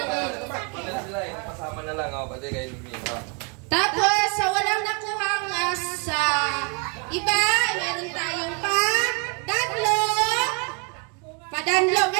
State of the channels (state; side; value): quieter; left; 33.7 dB